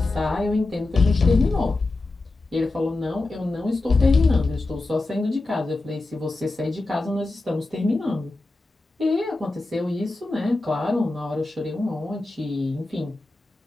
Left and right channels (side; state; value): right; quieter; 3.1 dB